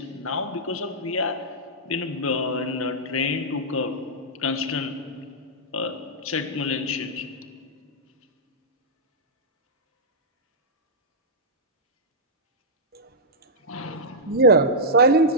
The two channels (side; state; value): both; normal; correlation -0.10